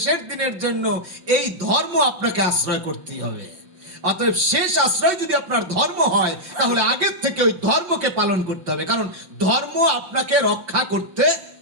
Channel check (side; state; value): left; late; 5.3 ms